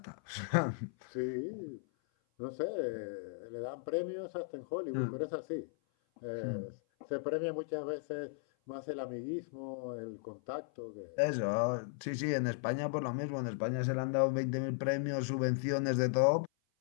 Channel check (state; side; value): silent; right; 53 dB below the other